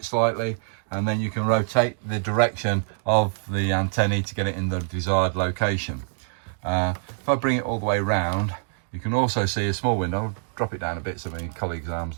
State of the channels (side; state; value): left; silent; digital silence